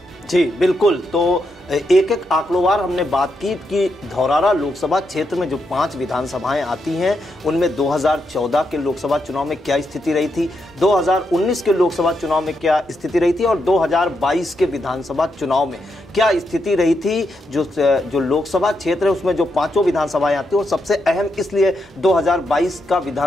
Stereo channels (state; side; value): normal; both; correlation 0.82